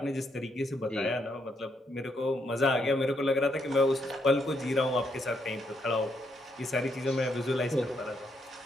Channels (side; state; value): both; normal; correlation 0.77